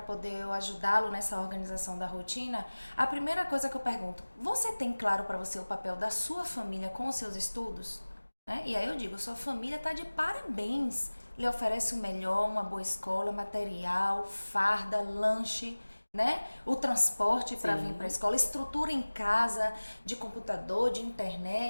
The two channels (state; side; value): inverted; both; correlation -1.00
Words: poder eu ajudá-lo nessa organização da rotina, a primeira coisa que eu pergunto, você tem claro para você o papel da sua família com os seus estudos? Né? E aí eu digo, sua família está de parabéns. Lhe oferece o melhor, uma boa escola, material, farda, lanche, né? O transporte para vir para a escola, estrutura em casa, de computador, de